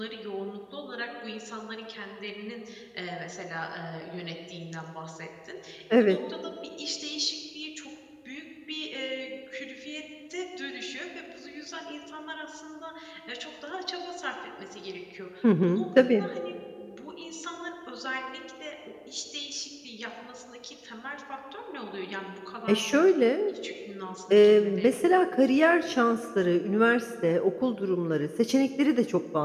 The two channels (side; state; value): both; identical; correlation 1.00